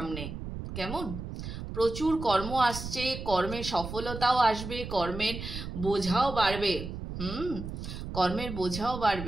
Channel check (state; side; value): noise; right; rumble, 8 dB below the sound